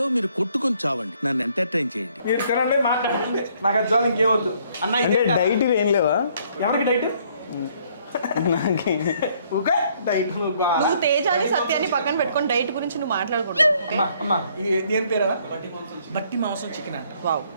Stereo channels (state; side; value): inverted; both; correlation -0.65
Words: మీరు కొట్టుకొని చావండి, నన్ను ఎంటర్టైన్ చేయండి. మీరు తినండి, మాట్లాడండి, నాకు అది చాలు, ఇంకేమొద్దు. అన్న డైట్ ఏం లేవా? ఎవరికి డైట్? నాకు ఓకే డైట్. నువ్వు తేజాని సత్యాన్ని పక్కన పెట్టుకొని డైట్ గురించి నువ్వు మాట్లాడకూడదు. అమ్మా ఇది ఏం పేరా? బట్టి మాంసం చికెన్ అంట. వావ్,